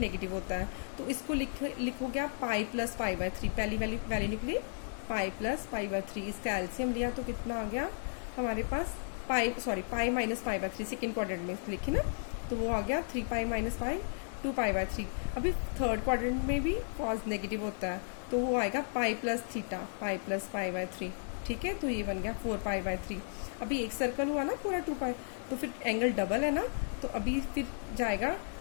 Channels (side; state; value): right; silent; digital silence